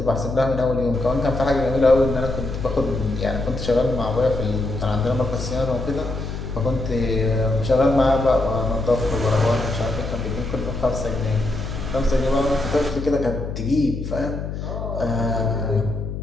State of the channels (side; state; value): left; noise; hum, 6 dB below the sound